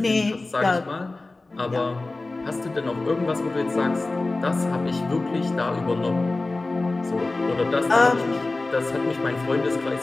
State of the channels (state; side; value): quieter; right; 3.2 dB